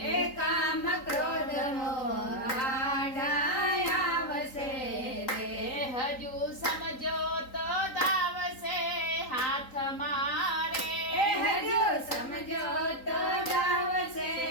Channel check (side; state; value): right; late; 3.9 ms